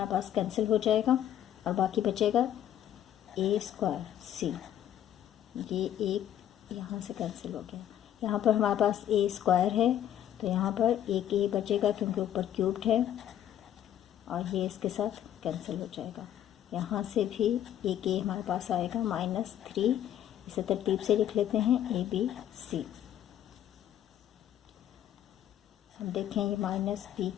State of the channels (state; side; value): quieter; right; 11.0 dB